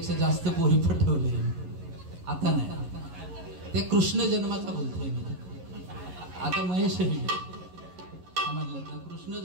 जास्त पोरीपट ठेवले. आता नाही, ते कृष्ण जन्माचा बोलतोय मी. आता महेश समजलं ना, कृष्ण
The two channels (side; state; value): left; late; 11 ms